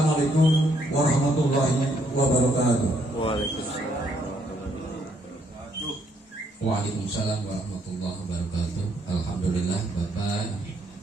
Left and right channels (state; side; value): normal; both; correlation 0.71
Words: warahmatullahi wabarakatuh. Waalaikumsalam warahmatullahi wabarakatuh. Alhamdulillah, Bapak